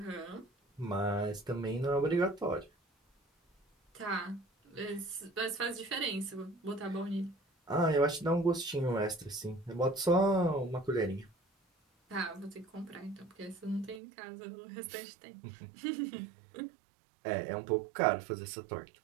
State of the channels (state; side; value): drops out; left; at 14.0 s